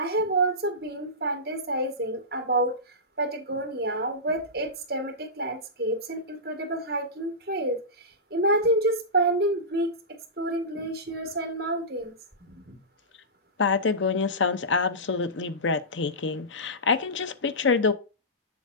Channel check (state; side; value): normal; both; correlation -0.18